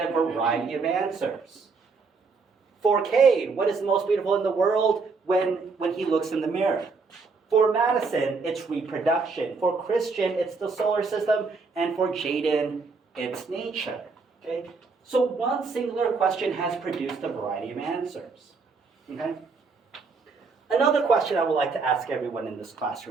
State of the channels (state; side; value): quieter; left; 4.5 dB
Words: a variety of answers. For Cade, what is the most beautiful in the world when he looks in the mirror? For Madison, it's reproduction. For Christian, it's the solar system. And for Jaden, it's nature. Okay? So one singular question has produced a variety of answers. Okay? Another question I would like to ask everyone in this